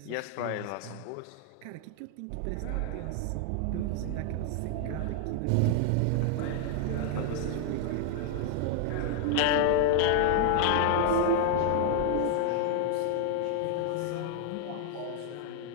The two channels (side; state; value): both; different; correlation 0.00